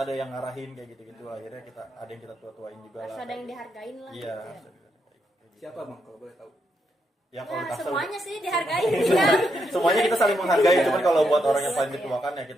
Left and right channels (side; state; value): both; normal; correlation 0.80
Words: yang ngarahin kayak gitu-gitu. Akhirnya kita ada yang kita tua-tuain juga Harus lah. ada yang dihargain lah. Iya. gitu ya. Siapa bang kalau boleh tahu? Ya kalau Ya, Tangsel- semuanya sih dihargain ya. semuanya kita saling menghargai. Cuman kalau buat orang yang paling Iya. dituakan ya